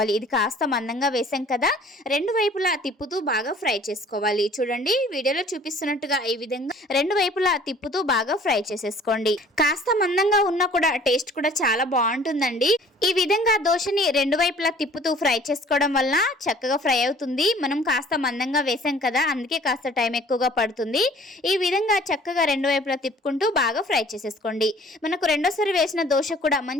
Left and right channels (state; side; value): normal; both; correlation 0.52